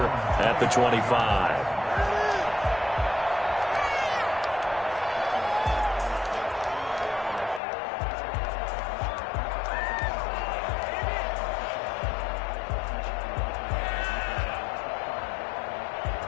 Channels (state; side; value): drops out; right; at 7.6 s